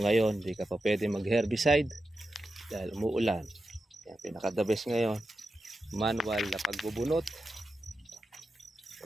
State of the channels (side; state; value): both; normal; correlation 0.90